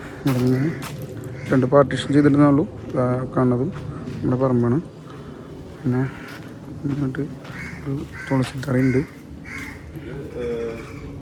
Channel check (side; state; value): both; identical; correlation 1.00